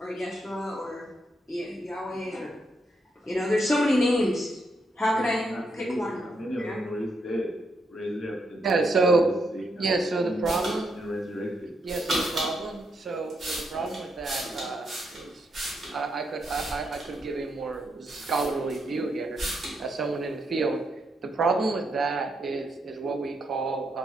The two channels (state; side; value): normal; both; correlation 0.79